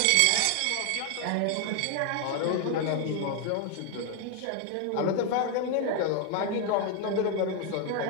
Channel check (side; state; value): both; different; correlation 0.00